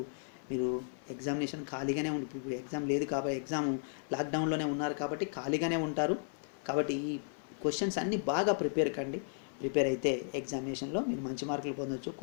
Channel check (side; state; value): right; silent; 55 dB below the other